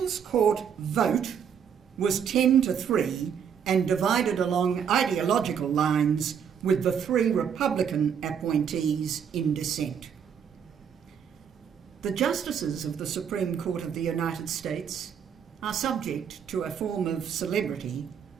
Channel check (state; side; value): quieter; left; 7.7 dB